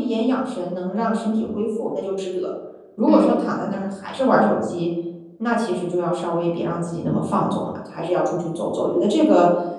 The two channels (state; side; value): identical; both; correlation 1.00